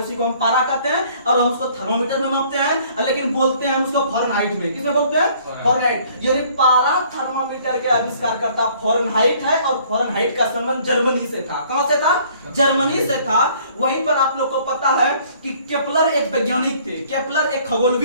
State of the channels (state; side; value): inverted; both; correlation -0.58